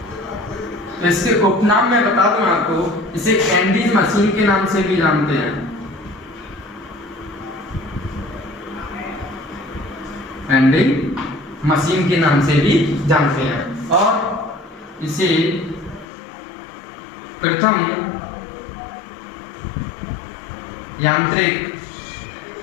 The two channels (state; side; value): drops out; right; at 16.1 s